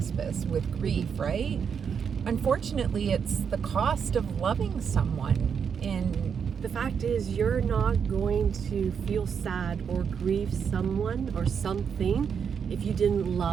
with grief, right? Unfortunately, it's the cost of loving someone. And the fact is, you're not going to feel sad or grieve someone or something if you didn't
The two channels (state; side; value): quieter; left; 6.9 dB